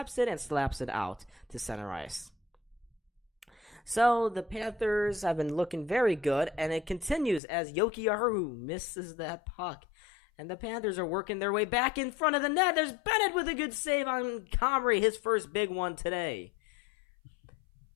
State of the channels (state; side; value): drops out; right; at 7.4 s